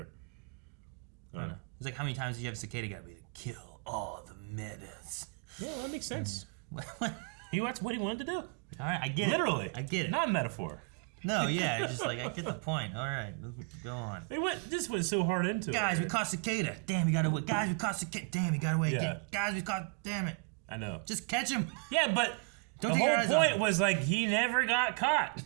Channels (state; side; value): quieter; left; 36.2 dB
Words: I don't know. It's like how many times do you have Cicada gotta be like, kill all the menace? Yeah, that makes sense. That's what he wanted to do. All right, I get it. Literally, I get it. Not metaphor. No, yeah, it's just like, I get the point. All right, go on. This went so hard into it. Guys, we caught cicada. Damn, we got away. Guys, we caught cicada. Damn, we got away again. Guys, we caught. Damn it. I know. Just catch him. Yeah, but Don't the take your whole eyes off point him. was like he never got caught,